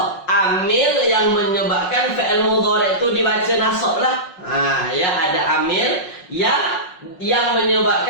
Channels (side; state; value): right; late; 5.5 ms